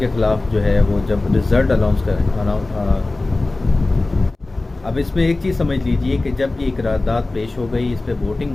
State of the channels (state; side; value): quieter; right; 3.1 dB